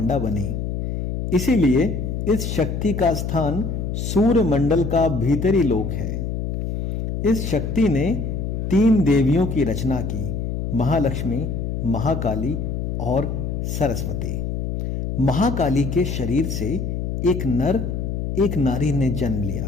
बनी। इसीलिए इस शक्ति का स्थान सूर्य मंडल का भीतरी लोक है। इस शक्ति ने 3 देवियों की रचना की, महालक्ष्मी, महाकाली और सरस्वती। महाकाली के शरीर से एक नर एक नारी ने जन्म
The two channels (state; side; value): noise; left; hum, 2 dB below the sound